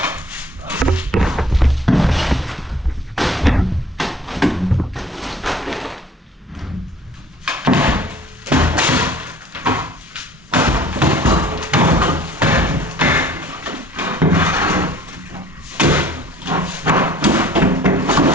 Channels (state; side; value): normal; both; correlation 0.52